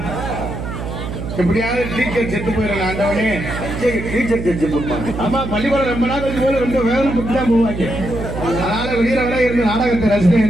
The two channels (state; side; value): noise; right; hum, 7 dB below the sound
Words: எப்படியாவது டீச்சர் செத்து போயிடலாம், ஆண்டவனே டீச்சர் செத்து போடுவாங்க. ஆமா பள்ளிக்கூடம் ரொம்ப நாள் கழிச்சு போல ரொம்ப வேதனை பட்டு தான் போவாங்க. அதனால வெளியில வர இருந்து நாடகத்தை ரசிகன்